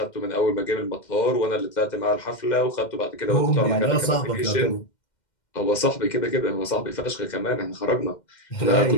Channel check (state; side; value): late; right; 2.1 ms